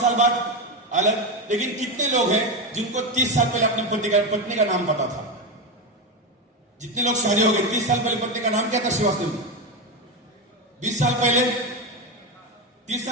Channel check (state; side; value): normal; both; correlation 0.13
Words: साल बाद अलग। लेकिन कितने लोग हैं जिनको 30 साल पहले अपनी पत्नी का नाम पता था? जितने लोग शादी हो गए, 30 साल पहले पत्नी का नाम क्या था? श्रीवास्तव। 20 साल पहले, 30